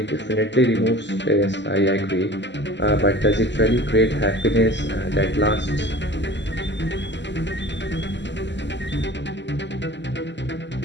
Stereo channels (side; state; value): right; late; 0.52 ms